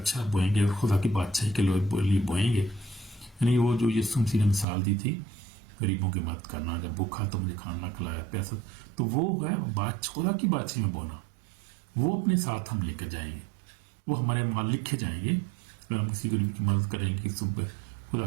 بوئیں گے، خدا کی بادشاہی کے لیے بوئیں گے، یعنی وہ جو یسوع مسیح نے مثال دی تھی غریبوں کی مدد کرنا، جب بھوکا تو مجھے کھانا کھلایا، پیسہ، تو وہ ہے خدا کی بادشاہی میں بونا، وہ اپنے ساتھ ہم لے کر جائیں گے، وہ ہمارے مال لکھے جائیں گے۔ اگر ہم کسی غریب کی مدد کریں گے، کسی خدا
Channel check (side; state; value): left; drops out; at 4.7 s